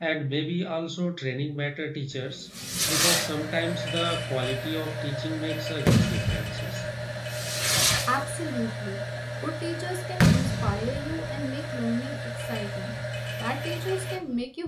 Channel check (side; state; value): both; identical; correlation 1.00